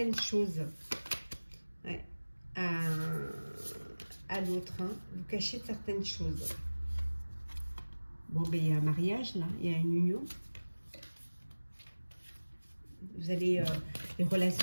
choses. Ouais. À l'autre, hein. Vous cachez certaines choses. Bon, ben, il y a un mariage, là. Il y a une union. Vous allez, vous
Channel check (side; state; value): both; inverted; correlation -1.00